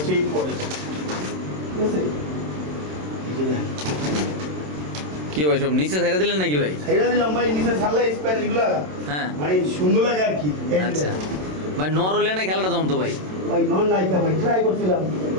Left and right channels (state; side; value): late; left; 27 ms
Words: এই পটার ঠিক আছে কি ভাই সব নিচে ছাইরা দিলেন নাকি ভাই ছাইরা দিলাম ভাই নিচে ছাড়লে স্প্যানিশ গুলা হ্যাঁ মানে সুন্দর লাগে আর কি আচ্ছা ভাই নর হলে না খেলাটা জমতো ভাই নর নাই ভাই ট্রাই করছিলাম